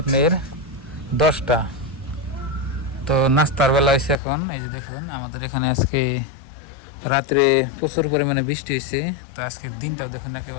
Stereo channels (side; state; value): right; drops out; at 4.2 s